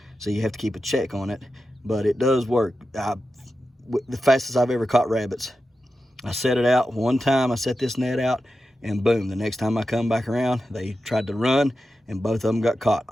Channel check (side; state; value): both; normal; correlation 0.91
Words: So you have to keep a check on it. But it does work. The fastest I've ever caught rabbits. I set it out one time. I set this net out, and boom, the next time I come back around, they tried to run, and both of them got caught.